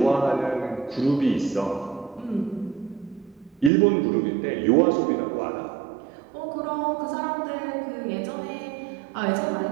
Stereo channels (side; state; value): left; drops out; at 3.7 s